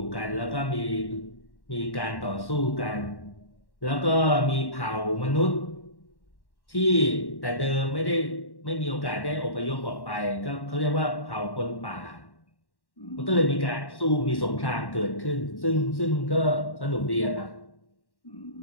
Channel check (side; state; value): right; late; 1.1 ms